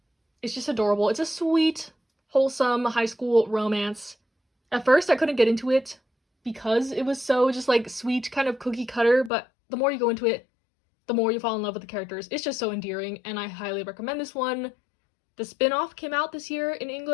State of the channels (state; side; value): drops out; right; at 9.3 s